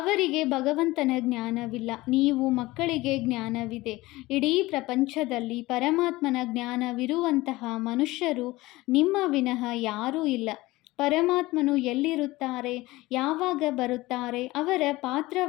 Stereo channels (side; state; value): right; quieter; 19.6 dB